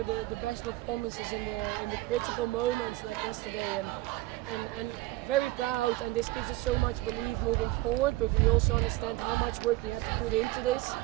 the best performances in the critical moments like yesterday, and very proud, and this gives us so much belief moving forward. But we also understand how much work we had to put into this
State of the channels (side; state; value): left; quieter; 18.8 dB